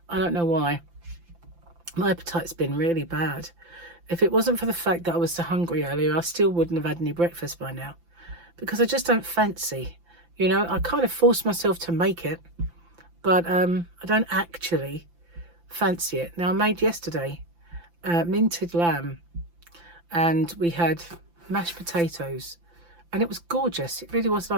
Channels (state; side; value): late; left; 5.9 ms